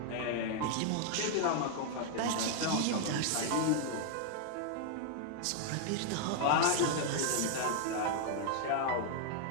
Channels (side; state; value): both; different; correlation 0.00